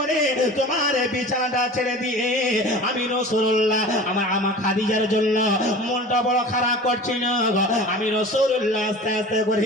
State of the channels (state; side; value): normal; both; correlation 0.39